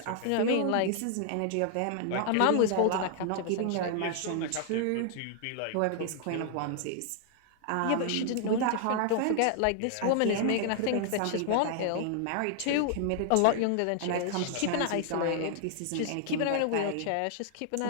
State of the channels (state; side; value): different; both; correlation -0.01